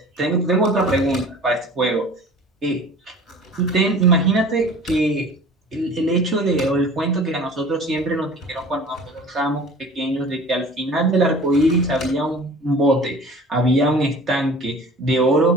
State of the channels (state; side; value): normal; both; correlation 0.43